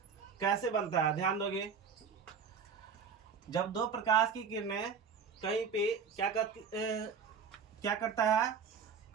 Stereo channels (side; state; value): left; quieter; 6.2 dB